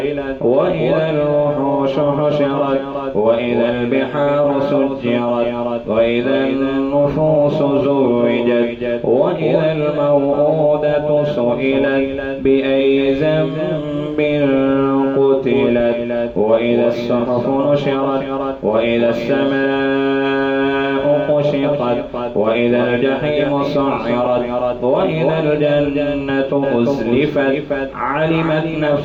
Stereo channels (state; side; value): identical; both; correlation 1.00